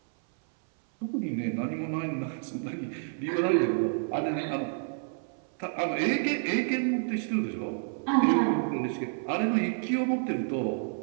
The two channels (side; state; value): left; silent; 58 dB below the other